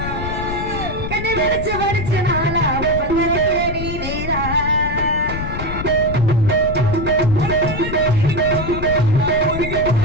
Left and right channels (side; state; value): left; noise; rumble, 6 dB below the sound